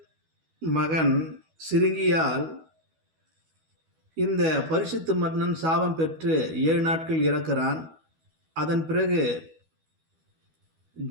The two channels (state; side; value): late; left; 12 ms